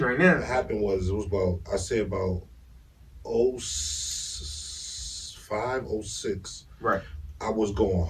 right now. What happened was, it was about 05, 06. Right. I was going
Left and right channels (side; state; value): both; identical; correlation 1.00